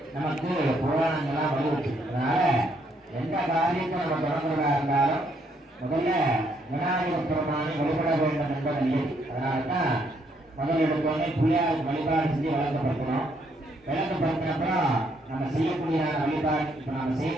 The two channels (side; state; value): both; normal; correlation 0.72